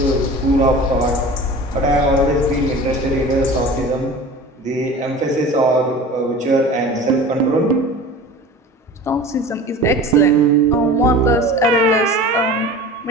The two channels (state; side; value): normal; both; correlation 0.37